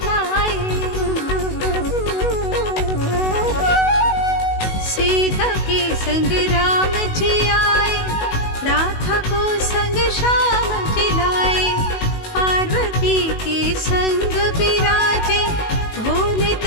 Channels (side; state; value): right; late; 19 ms